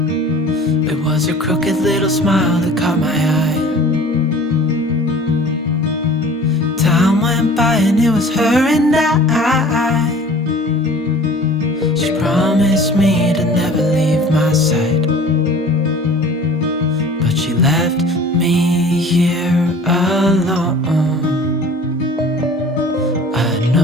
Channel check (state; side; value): normal; both; correlation 0.45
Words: It was her crooked little smile that caught my eye. Time went by and it was her and I. She promised me to never leave my side, but she left me here alone. I